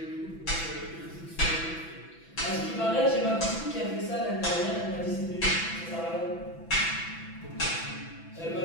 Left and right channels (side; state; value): right; late; 6.0 ms